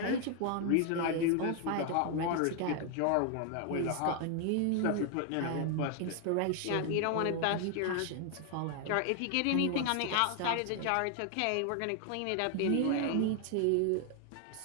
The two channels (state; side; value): different; both; correlation 0.00